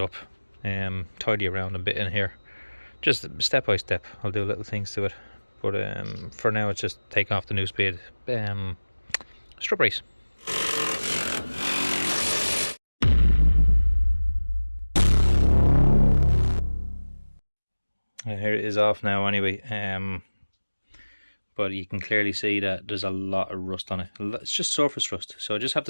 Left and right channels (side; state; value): both; inverted; correlation -1.00